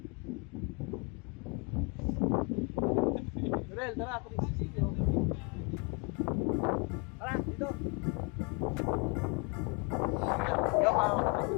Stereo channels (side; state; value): right; quieter; 32.3 dB